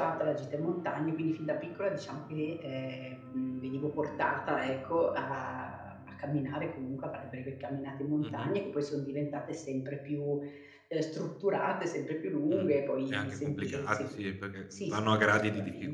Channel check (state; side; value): identical; both; correlation 1.00